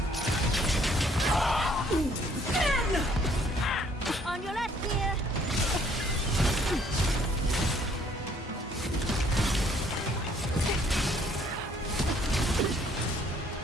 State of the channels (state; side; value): normal; both; correlation 0.63